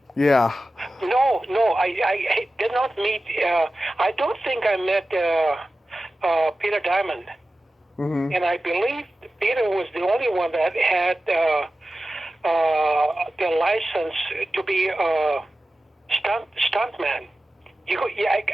Yeah. No, I did not meet. I don't think I met Peter Diamond. Mm-hmm. And I believe Peter was the only one that had the license to be a stuntman.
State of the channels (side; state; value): both; normal; correlation 0.94